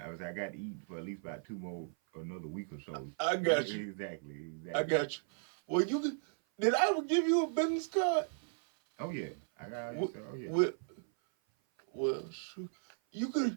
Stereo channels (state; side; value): silent; left; 54 dB below the other